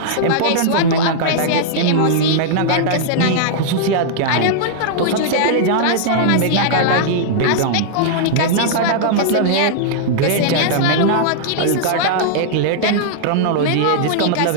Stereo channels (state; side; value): different; both; correlation -0.01